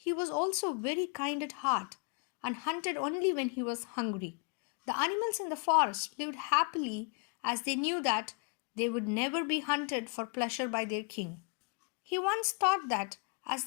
was also very kind at heart and hunted only when he was hungry. The animals in the forest lived happily as they knew that they would never be hunted for pleasure by their king. He once thought that, as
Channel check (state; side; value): quieter; right; 35.4 dB